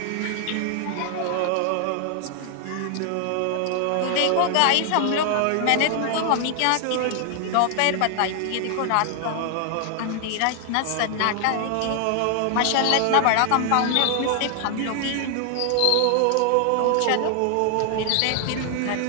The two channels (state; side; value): different; both; correlation 0.00